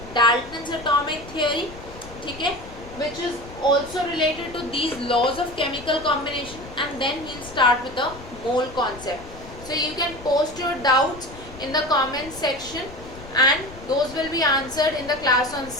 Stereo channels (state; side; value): noise; left; rumble, 16 dB below the sound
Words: Dalton's atomic theory, ठीक है, which is also related to these laws of chemical combination, and then we'll start with the mole concept. So you can post your doubts in the comment section and those will be answered in the class on